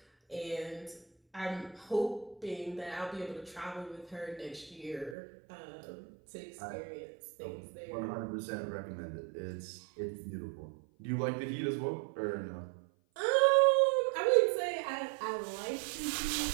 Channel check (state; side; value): drops out; left; at 5.2 s